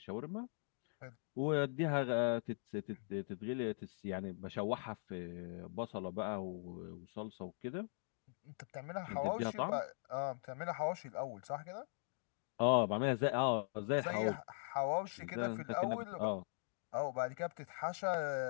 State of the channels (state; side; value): silent; right; digital silence